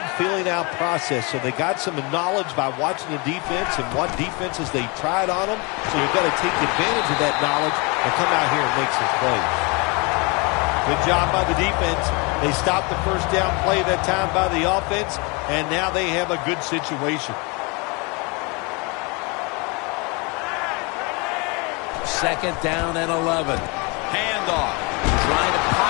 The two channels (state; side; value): quieter; right; 29.6 dB